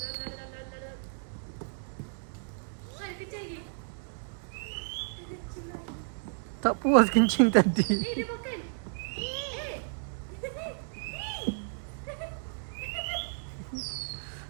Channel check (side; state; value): left; silent; digital silence